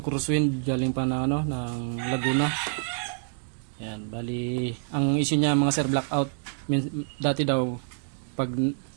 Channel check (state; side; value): silent; left; digital silence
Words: Crosswind galing pa ng, ng Laguna. Yan, bali ang issue niya mga sir, blackout. Dati daw pag